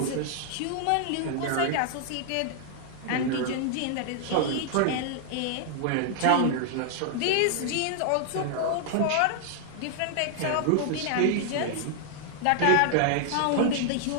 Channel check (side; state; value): both; different; correlation 0.00